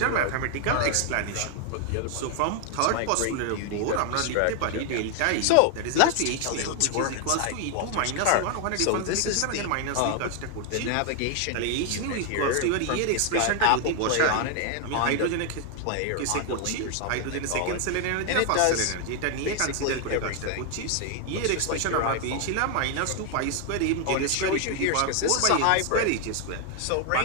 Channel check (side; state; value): both; different; correlation 0.00